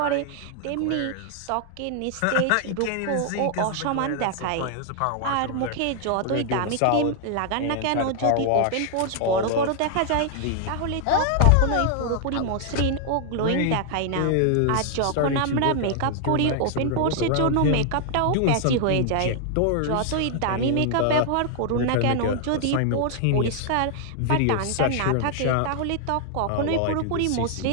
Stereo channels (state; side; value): different; both; correlation 0.00